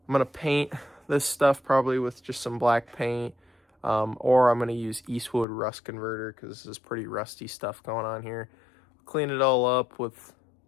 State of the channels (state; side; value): drops out; right; at 5.5 s